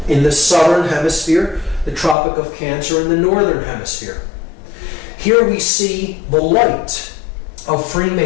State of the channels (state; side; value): drops out; right; at 2.1 s